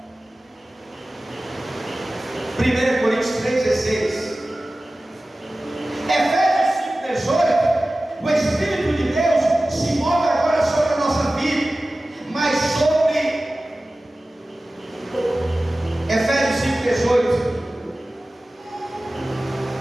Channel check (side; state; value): both; normal; correlation 0.96